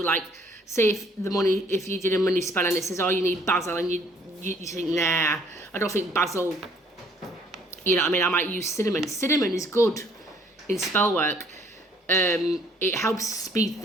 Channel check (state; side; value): normal; both; correlation 0.61